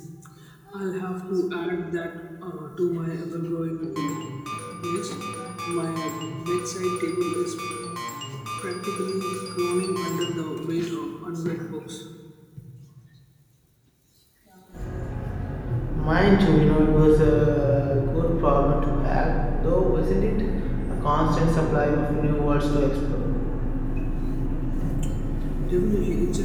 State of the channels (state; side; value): identical; both; correlation 1.00